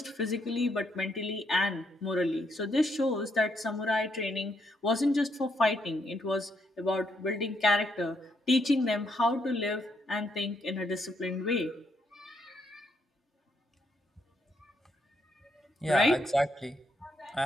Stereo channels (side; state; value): both; normal; correlation 0.76